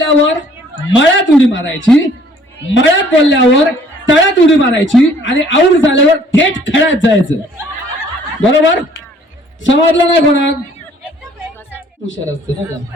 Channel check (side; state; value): both; normal; correlation 0.58